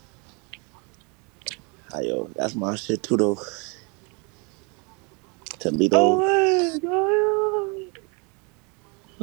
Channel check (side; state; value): left; quieter; 32.1 dB